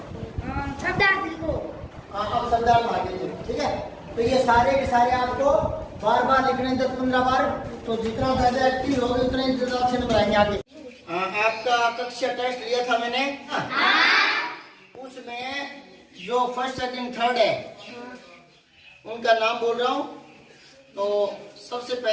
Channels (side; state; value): both; identical; correlation 1.00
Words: सरदार लिखो। अब सरदार आगे लिखो, ठीक है। तो ये सारे के सारे आपको बार बार लिखने 10-15 बार, तो जितना ज्यादा एक्टिव होगे उतने ज्यादा अच्छे नंबर आएंगे आगे। आपका कक्षा टेस्ट लिया था मैंने, उसमें जो फर्स्ट सेकंड थर्ड है उनका नाम बोल रहा हूँ। तो सबसे